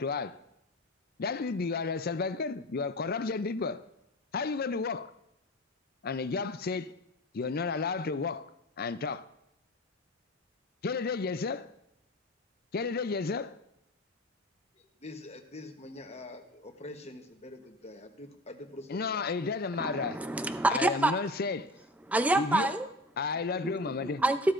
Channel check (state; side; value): normal; both; correlation 0.34